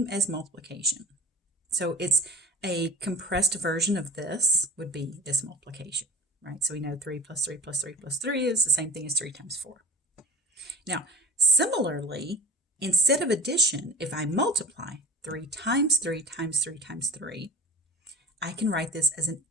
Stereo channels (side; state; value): both; normal; correlation 0.37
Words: as multiplication. So it's a compressed version of this would be this multiplication, right? So we know 3 plus 3 plus 3 plus 3 is the same thing as 3 times 4. Now, similarly, instead of addition, if I multiply 3 times 3 times 3 times 3, I can write this as an